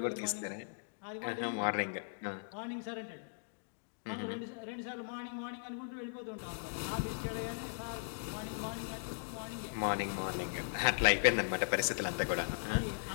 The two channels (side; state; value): right; silent; digital silence